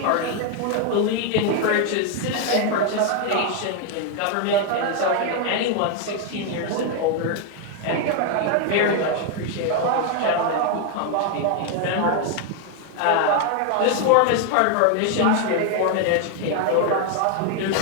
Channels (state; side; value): different; both; correlation 0.01